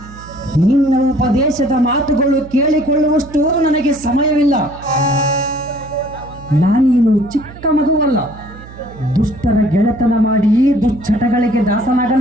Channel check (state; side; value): noise; right; hum, 17 dB below the sound